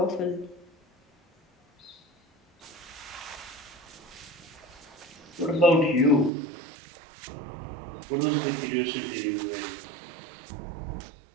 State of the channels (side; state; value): left; drops out; at 6.3 s